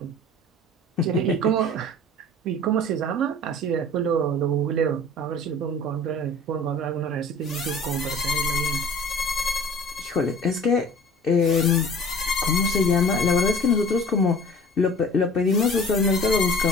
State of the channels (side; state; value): both; normal; correlation 0.45